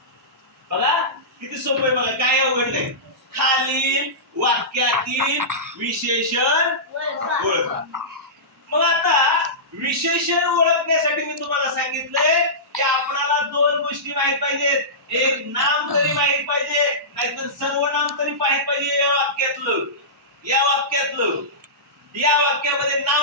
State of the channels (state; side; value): normal; both; correlation -0.19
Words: बघा किती सोपं आहे, बघा काय अवघड नाही. खालील वाक्यातील विशेषण ओळखा. मग आता विशेषण ओळखण्यासाठी मी तुम्हाला सांगितलंय की आपल्याला दोन गोष्टी माहित पाहिजेत. एक नाम तरी माहित पाहिजे, नाहीतर सर्वनाम तरी माहित पाहिजे. या वाक्यामध्ये